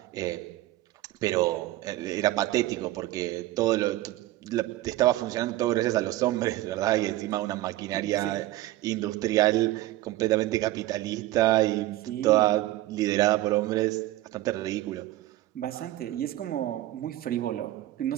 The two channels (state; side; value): quieter; left; 16.2 dB